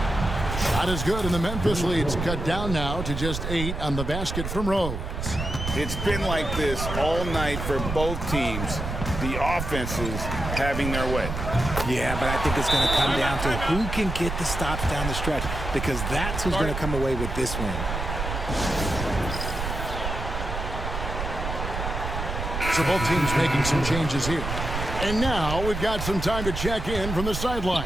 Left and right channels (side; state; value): right; noise; rumble, 4 dB below the sound